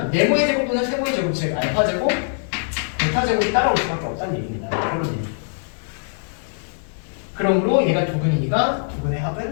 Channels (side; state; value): right; silent; digital silence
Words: 네모의 제곱 또는 세모의 제곱 즉 알파 제곱, 베타 제곱이 따라올 수밖에 없다는 얘기입니다. 그런 얘기. 그러므로 얘가 두 근이니까 두 근의